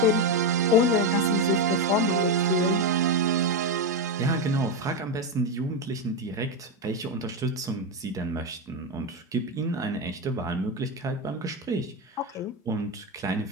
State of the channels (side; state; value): both; normal; correlation 0.10